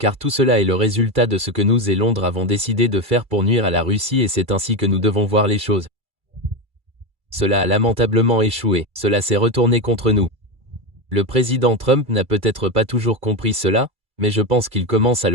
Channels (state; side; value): late; left; 2.3 ms